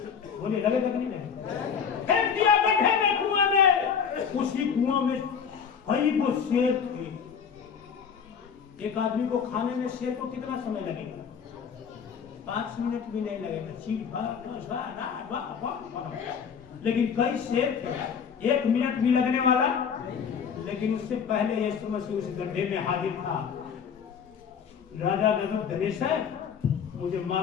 बोले लगे नहीं लगे? फेंक दिया गड्ढे में, कुआं में। उसी कुआं में कई वो शेर थे। एक आदमी को खाने में शेर को कितना समय लगेगा? 5 मिनट भी नहीं लगेगा। लेकिन कई शेर थे, 1 मिनट भी लगने वाला। लेकिन उससे पहले यीशु मसीह उस गड्ढे में हाजिर था। राजा नबूकदनेस्सर, मुझे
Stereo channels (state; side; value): quieter; right; 6.9 dB